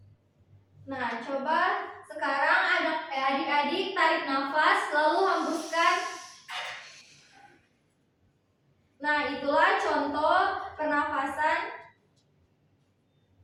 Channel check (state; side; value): identical; both; correlation 1.00